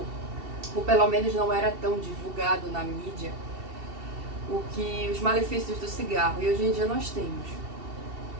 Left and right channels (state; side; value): late; left; 2.7 ms